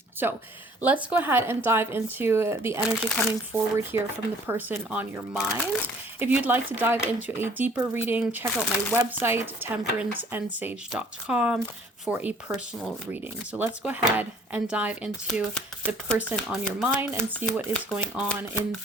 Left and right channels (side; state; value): both; normal; correlation 0.56